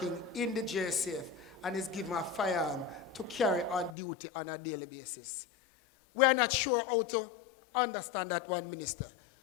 in the JSF and is given a firearm to carry on duty on a daily basis. We are not sure how to understand that one, Minister.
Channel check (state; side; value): drops out; right; at 4.0 s